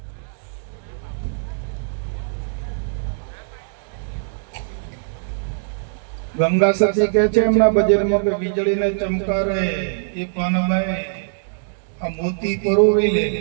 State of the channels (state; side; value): silent; left; digital silence